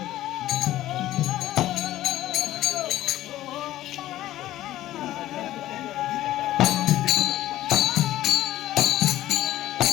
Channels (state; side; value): quieter; right; 14.4 dB